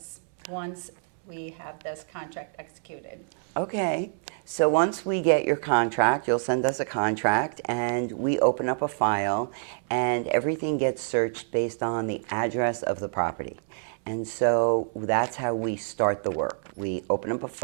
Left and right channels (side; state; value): left; silent; 60 dB below the other